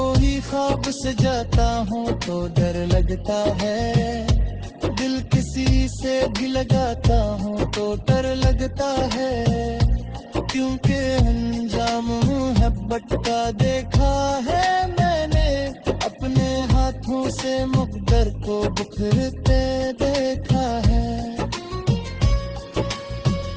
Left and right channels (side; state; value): both; identical; correlation 1.00